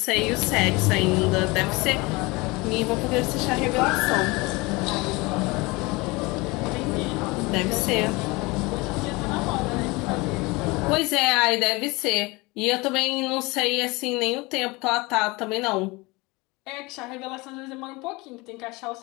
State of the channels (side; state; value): right; quieter; 24.2 dB